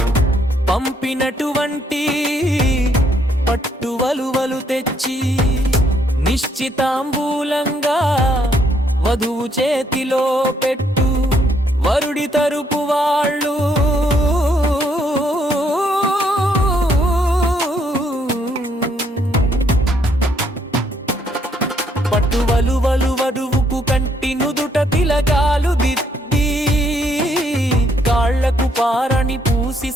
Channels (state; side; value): normal; both; correlation 0.70